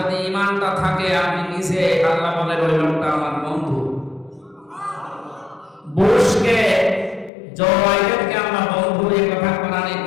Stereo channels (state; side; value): drops out; right; at 7.3 s